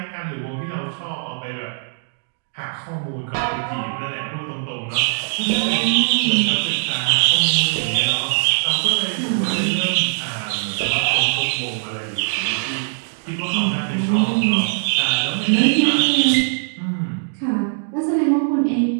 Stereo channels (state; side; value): silent; left; digital silence